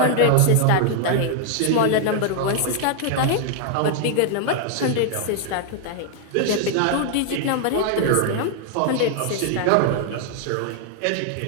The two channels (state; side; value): different; both; correlation 0.00